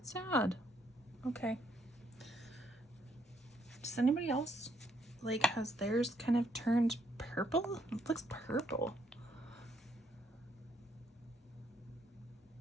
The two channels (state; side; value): normal; both; correlation 0.72